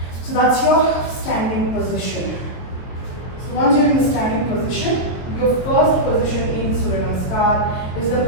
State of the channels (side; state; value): right; late; 23 ms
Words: So that's your standing position. So once you're in the standing position, your first position in Surya Namaskar is the